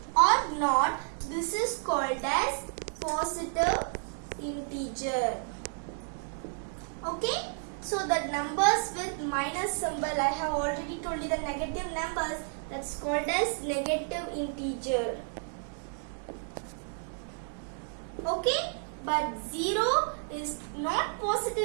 or not, this is called as positive integer. Okay. So the numbers with minus symbol, I have already told you the negative numbers, that's called as negative integer. Okay, but 0 is not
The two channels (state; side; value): silent; left; 57 dB below the other